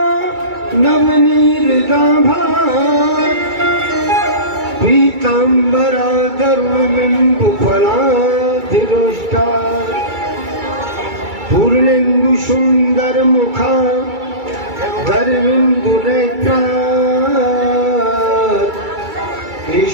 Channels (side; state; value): left; late; 2.3 ms